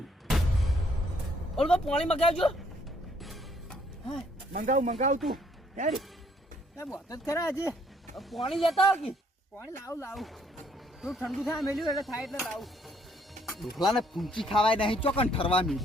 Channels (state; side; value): normal; both; correlation 0.66